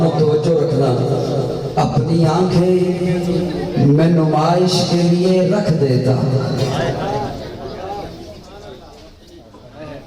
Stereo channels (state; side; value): identical; both; correlation 1.00